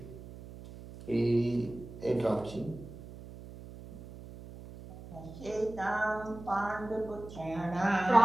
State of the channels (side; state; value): right; noise; hum, 15 dB below the sound